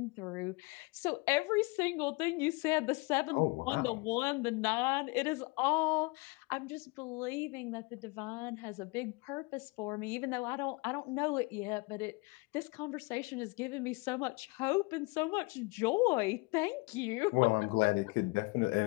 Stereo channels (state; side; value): quieter; right; 27.0 dB